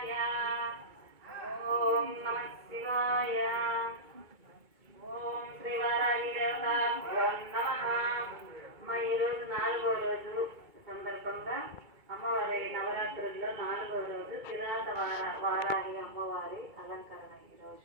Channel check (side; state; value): left; late; 2.2 ms